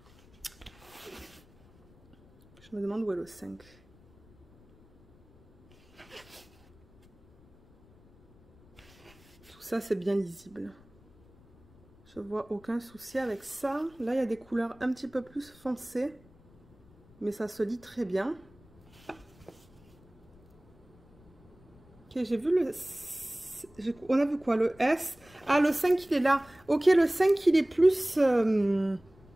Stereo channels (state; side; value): noise; left; rumble, 27 dB below the sound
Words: Je me demande où est le 5. Tout ça, c'est bien lisible. Je vois aucun souci avec ça. Là, il y a des couleurs un petit peu plus foncées. Mais ça se lit très bien. Ok, j'ai vu le... On a vu quoi? Le S. Ah, le 5, il est là. Ok, le 5, il est plus...